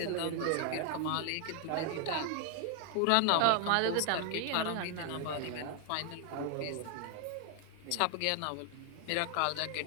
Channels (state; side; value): different; both; correlation 0.00